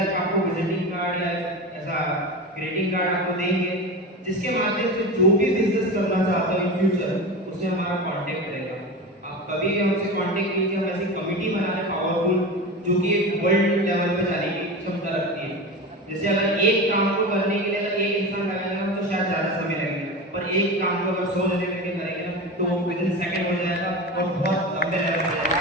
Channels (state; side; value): normal; both; correlation 0.26